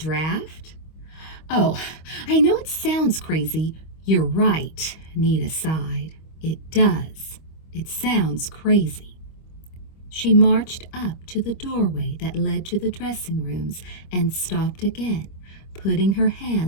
Oh, I know it sounds crazy. You're right, Nita sighed. It does. It sounds crazy. She marched up to the doorway that led to the dressing rooms and stopped again, putting her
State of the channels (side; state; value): right; late; 25 ms